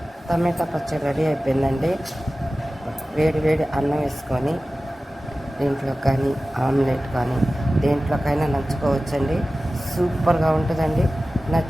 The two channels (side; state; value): both; normal; correlation 0.96